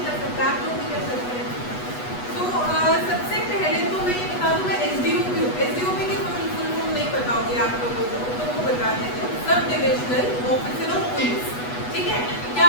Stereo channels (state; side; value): late; right; 8.1 ms